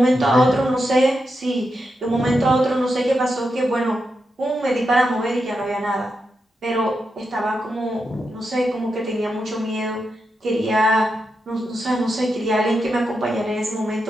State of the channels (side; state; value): both; normal; correlation 0.86